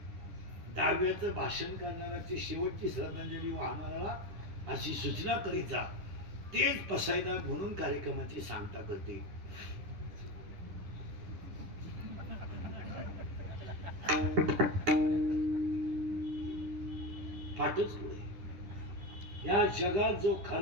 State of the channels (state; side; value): late; left; 10 ms